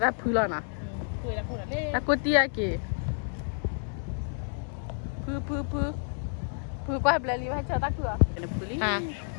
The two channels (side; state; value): right; silent; digital silence